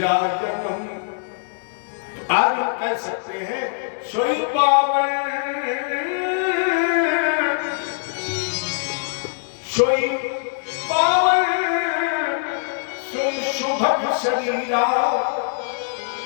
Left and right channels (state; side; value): silent; right; digital silence